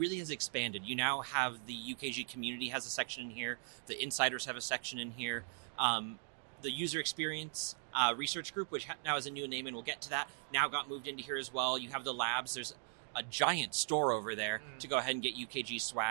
has expanded. You now have the UKG community has a section in here. The insiders have a section in here. The user experience research group, which now has a new name, and we'll get to that, now got moved into here as well. You have the labs. There's a giant store over there to go ahead and get UKG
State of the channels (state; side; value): silent; left; 52 dB below the other